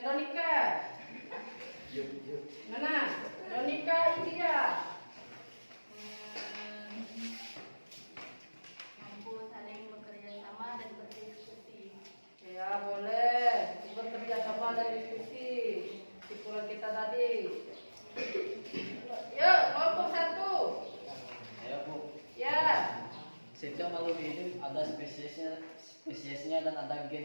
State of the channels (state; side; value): inverted; both; correlation -1.00